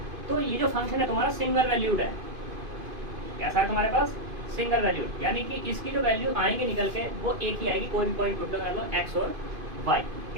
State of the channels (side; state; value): left; late; 2.5 ms